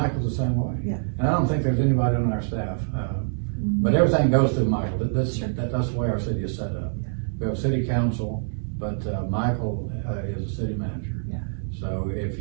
the same way. And I don't think there's anybody on our staff. But everything goes through Michael. That's the way our city is set up. We have a city council, but Michael is a city manager. So if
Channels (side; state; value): left; silent; 60 dB below the other